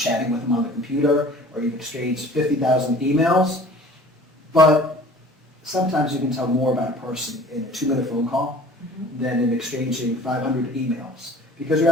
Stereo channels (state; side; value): normal; both; correlation 0.47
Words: with them on the computer, or you've exchanged 50,000 emails, but sometimes you can tell more about a person in a 2-minute phone call than in exchanging 500 emails, because you